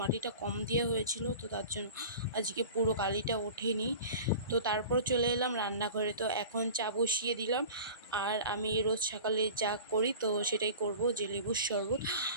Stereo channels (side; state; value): both; inverted; correlation -0.38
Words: মাটিটা কম দেওয়া হয়েছিল, তো তার জন্য আজকে পুরো কালিটা ওঠেনি। তো তারপর চলে এলাম রান্নাঘরে। তো এখন চা বসিয়ে দিলাম। আর আমি রোজ সকালে যা করি তো সেটাই করব, যে লেবুর শরবত